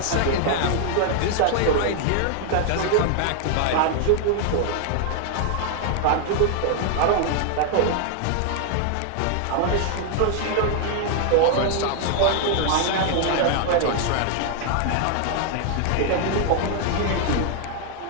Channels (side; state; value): both; different; correlation 0.00